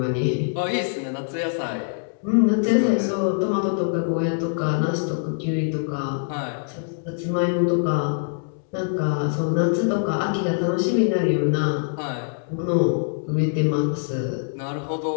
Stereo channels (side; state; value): right; silent; 63 dB below the other